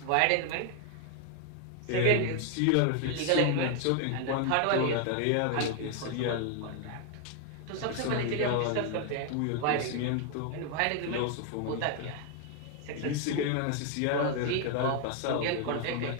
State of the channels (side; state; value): both; different; correlation 0.01